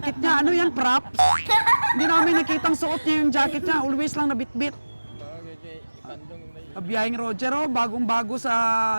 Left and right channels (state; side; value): inverted; both; correlation -1.00